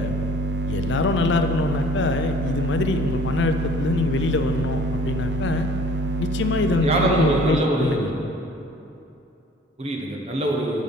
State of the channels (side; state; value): both; normal; correlation 0.52